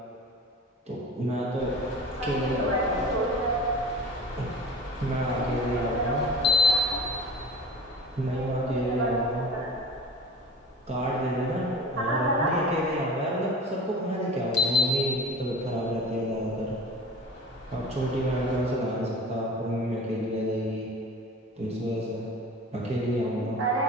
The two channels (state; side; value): normal; both; correlation 0.39